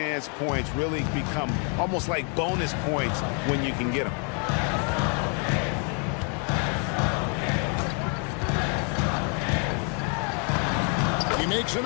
points really become almost like bonus points when you can get them. He makes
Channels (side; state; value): right; quieter; 38.8 dB